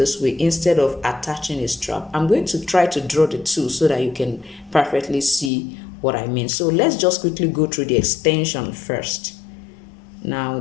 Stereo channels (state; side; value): drops out; right; at 5.5 s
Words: way instead of attaching a strap. I'm going to try to draw the two so that you can perfectly see what I mean. So let's just quickly go through the extension first. Now